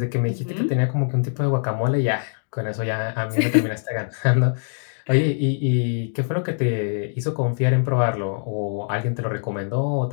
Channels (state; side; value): silent; right; digital silence